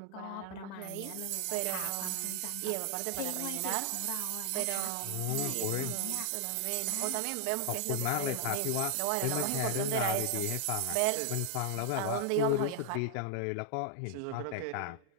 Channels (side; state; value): both; different; correlation 0.00